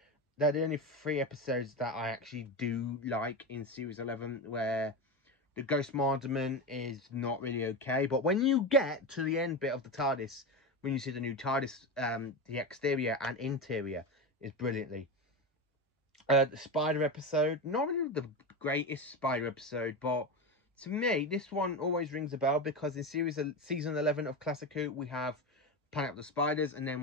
They're the only 3 episodes that I actually do like in series 11, where the Ghost Mardament is not really okay. But when you get to the end bit of the TARDIS, when you see the new TARDIS, the exterior and interior is brilliantly. The Spider episode, not really the greatest Spider episode, but to me, this one always rings a bell because in season 11 of Classic Who, we have Planet of the Spiders, and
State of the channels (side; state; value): both; normal; correlation 0.19